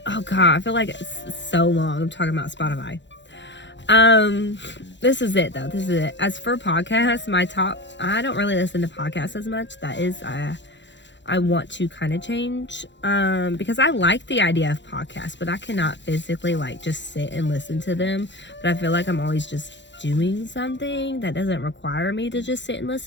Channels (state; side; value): late; right; 0.52 ms